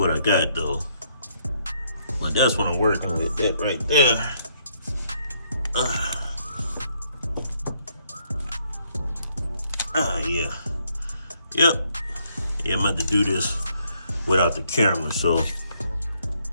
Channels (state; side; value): inverted; both; correlation -0.71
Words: I got though. But that's what I'm working with, that right there. Yeah. Yep. Yeah, I'm about to do this without the camera, so.